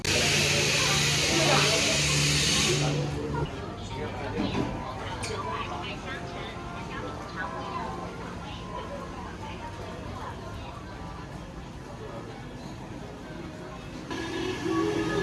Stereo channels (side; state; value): both; identical; correlation 1.00